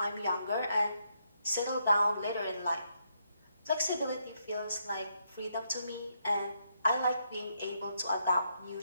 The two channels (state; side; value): inverted; both; correlation -0.78